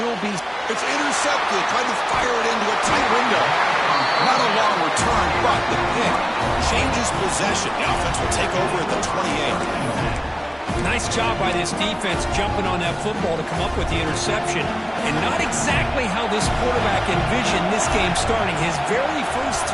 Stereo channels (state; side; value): identical; both; correlation 1.00